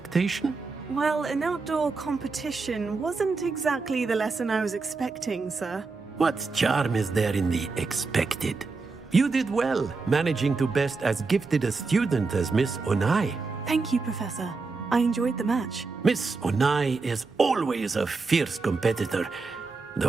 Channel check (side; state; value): left; quieter; 4.2 dB